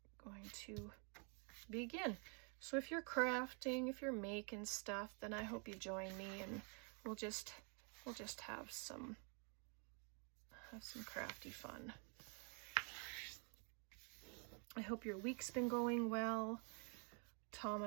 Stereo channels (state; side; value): quieter; left; 38.8 dB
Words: going to begin. So if you're crafting, if you're making stuff, then I hope you join me, and we'll just have some crafty fun. I hope your week's been going well. Tom